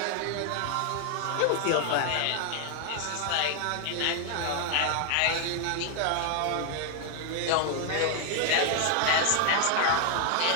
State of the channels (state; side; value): different; both; correlation 0.00